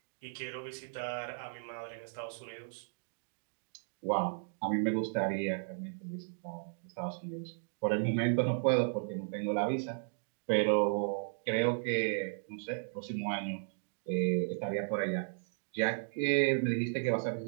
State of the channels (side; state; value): left; silent; digital silence